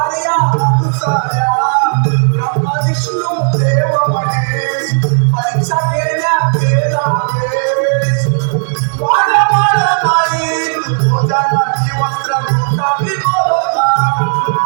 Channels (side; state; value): left; silent; digital silence